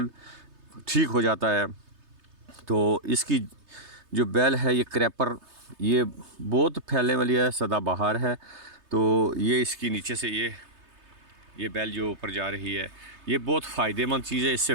ठीक हो जाता है। तो इसकी जो बेल है ये क्रैपर, ये बहुत फैलने वाली है, सदाबहार है। तो ये इसकी नीचे से ये बेल जो ऊपर जा रही है, ये बहुत फ़ायदेमंद चीज़ है, इससे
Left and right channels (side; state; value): left; late; 3.3 ms